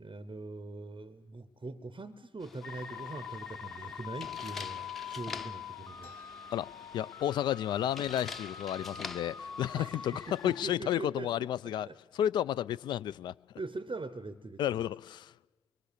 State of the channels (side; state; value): right; quieter; 8.0 dB